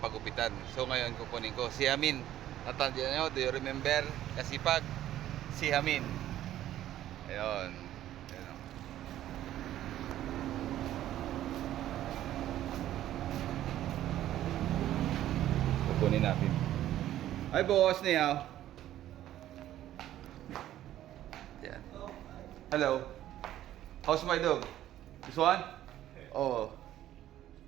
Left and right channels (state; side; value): quieter; left; 12.9 dB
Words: So ngayon kukunin ko si Amin. Natandiyan nyo, do you remember kasipag? Si Amin. Ayun. Ayun o. Kukunin natin. Hi boss, niyaw. Yan. Hello. How's my dog? This one? Oh.